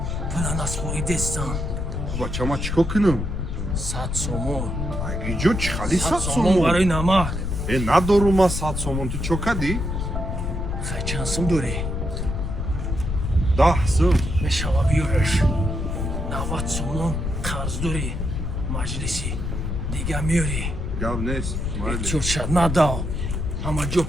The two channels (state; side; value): noise; left; rumble, 2 dB below the sound